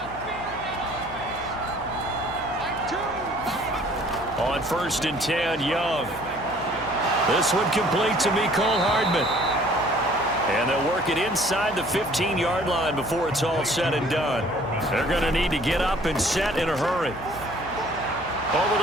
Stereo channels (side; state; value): left; noise; hum, 16 dB below the sound